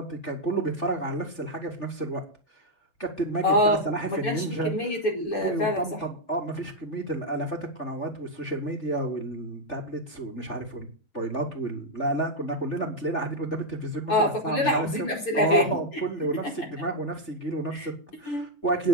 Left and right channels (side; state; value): right; late; 6.9 ms